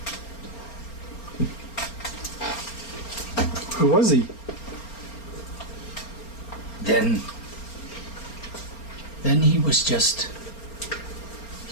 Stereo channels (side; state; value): right; late; 4.3 ms